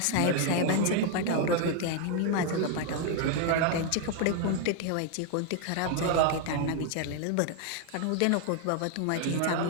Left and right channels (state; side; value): different; both; correlation 0.00